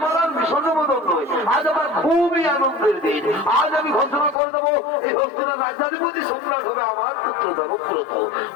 আর বিষণ্ণ বদল নয়, আজ আমার খুবই আনন্দের দিন। আজ আমি ঘোষণা করে দেবো এই হস্তিনার রাজ্যাধিপতি সম্রাট হবে আমার পুত্র দেবব্রত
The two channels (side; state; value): right; drops out; at 4.4 s